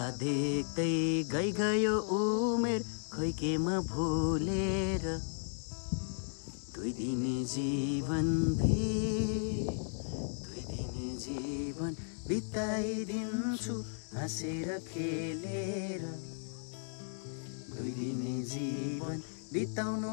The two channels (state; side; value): silent; right; digital silence